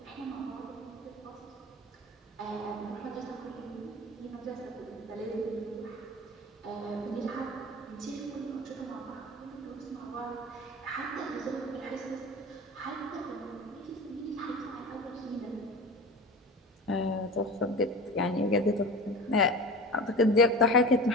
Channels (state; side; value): normal; both; correlation 0.33